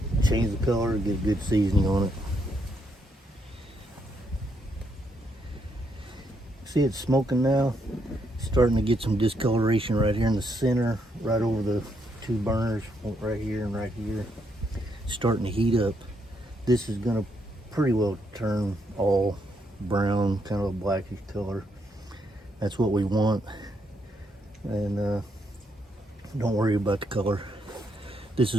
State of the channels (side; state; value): both; normal; correlation 0.76